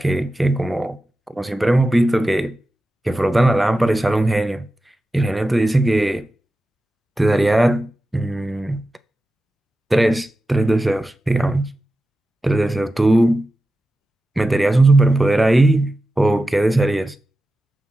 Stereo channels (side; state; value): both; normal; correlation 0.93